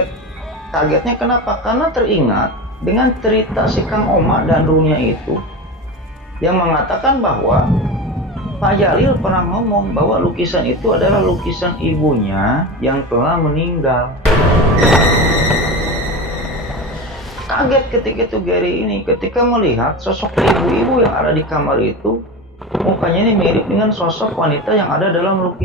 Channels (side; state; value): both; normal; correlation 0.26